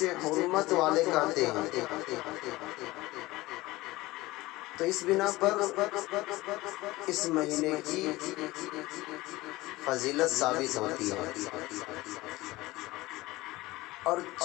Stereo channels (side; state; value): right; quieter; 19.3 dB